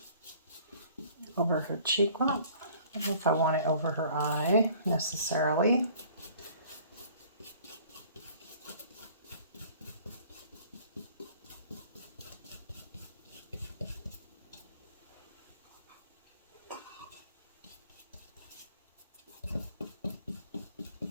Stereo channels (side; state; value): both; inverted; correlation -0.52